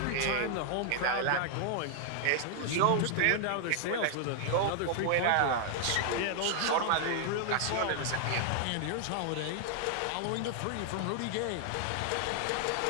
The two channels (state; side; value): different; both; correlation 0.00